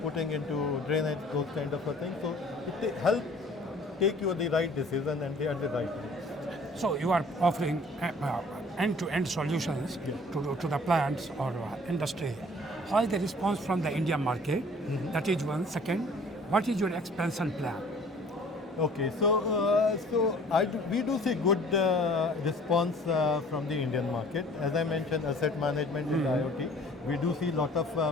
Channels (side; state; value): both; normal; correlation 0.51